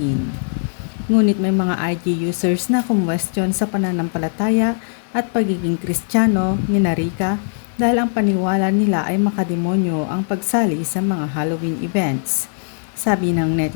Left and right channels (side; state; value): right; silent; digital silence